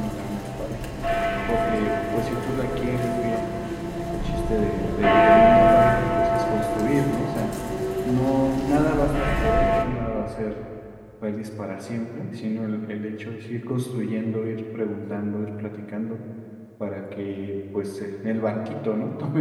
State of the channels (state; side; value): identical; both; correlation 1.00